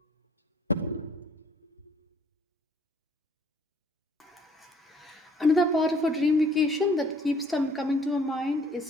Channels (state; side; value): normal; both; correlation 0.59